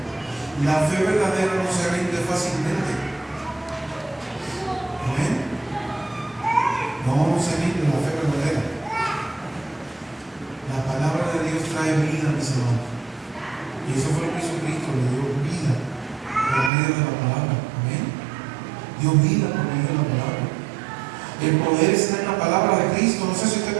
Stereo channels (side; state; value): left; drops out; at 16.7 s